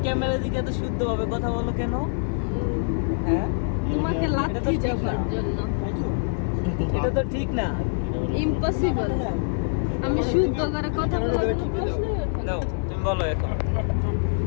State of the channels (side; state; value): right; silent; digital silence